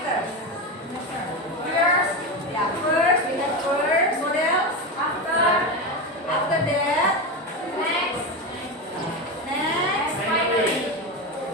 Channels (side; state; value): both; normal; correlation 0.17